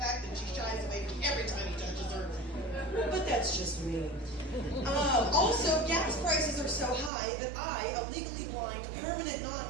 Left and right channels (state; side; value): drops out; left; at 7.1 s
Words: that she shies away every time he touches her. But that's just me. Also, gas prices are so high that I, a legally blind, permanent